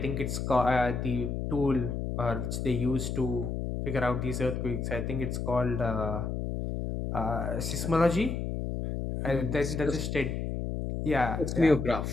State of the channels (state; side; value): noise; left; hum, 3 dB below the sound